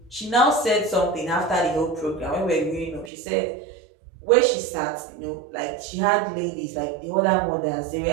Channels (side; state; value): left; drops out; at 3.1 s